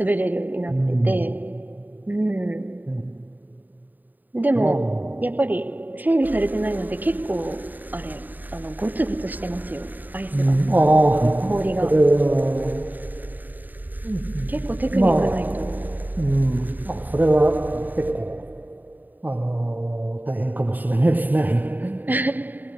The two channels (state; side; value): late; left; 0.087 ms